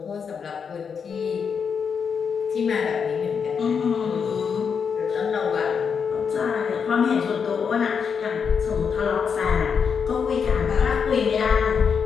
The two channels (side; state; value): right; quieter; 6.4 dB